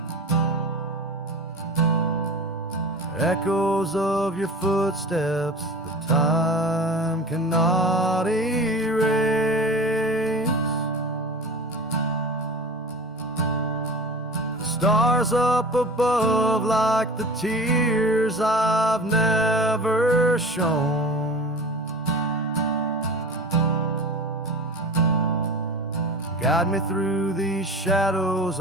Echoes of your footsteps that time cannot erase. The stars up above like the tears I've never shown. Guide me through these shadows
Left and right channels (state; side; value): normal; both; correlation 0.35